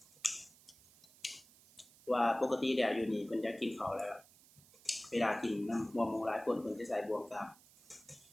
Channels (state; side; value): noise; right; hiss, 25 dB below the sound